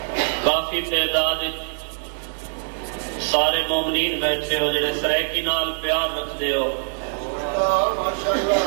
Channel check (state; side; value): silent; left; digital silence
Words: کافی تعداد سارے مومنین بیٹھے ہو جڑے سریکی نال پیار رکھ دے ہو